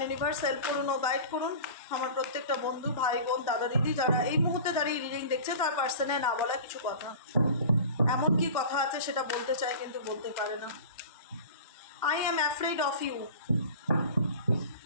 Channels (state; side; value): inverted; both; correlation -0.37